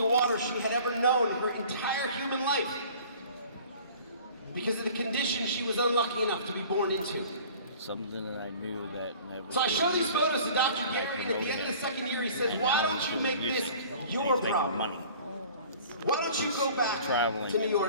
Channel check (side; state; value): both; inverted; correlation -0.47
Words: water she had ever known in her entire human life. Because of the condition she was unlucky enough to be born into. Something that I knew that never. So I show these photos to Dr. Gary, and at the end of the second year he says, why don't you make this your problem? Money. Why don't you go back Traveling to New